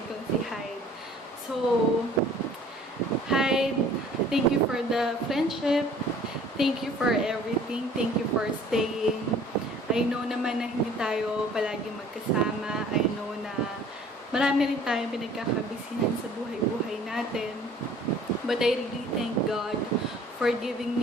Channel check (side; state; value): both; normal; correlation 0.52